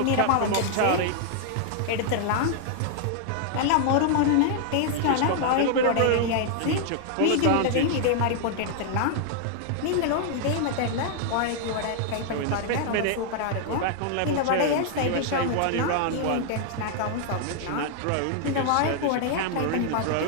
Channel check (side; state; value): both; different; correlation 0.00